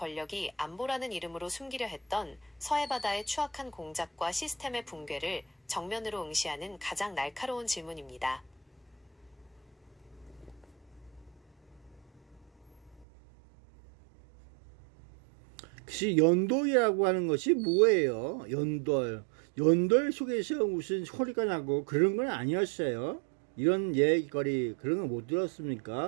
안보라는 이름으로 숨기려 했던 서해바다의 추악한 공작과 시스템의 붕괴를 정면으로 응시하는 가장 날카로운 질문입니다. 혹시 연돌이라고 하는 것이 뭐예요? 연돌. 연돌 속에서 무슨 소리가 나고 그런 건 아니었어요? 이런 얘기거리 그런 거 못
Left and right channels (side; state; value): left; drops out; at 13.1 s